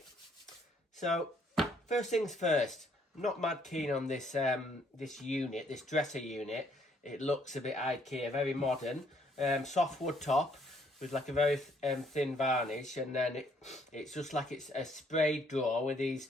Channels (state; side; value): normal; both; correlation 0.67